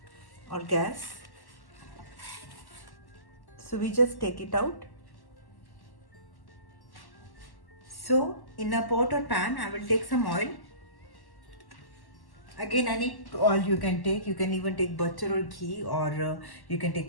or gas. So we just take it out. So in a pot or pan, I will take some oil. Again, any oil you can take. You can even take butter or ghee, or you can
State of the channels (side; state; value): right; late; 1.1 ms